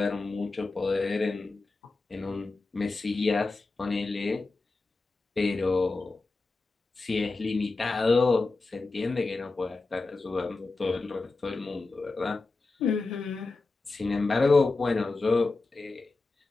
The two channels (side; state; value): right; quieter; 3.6 dB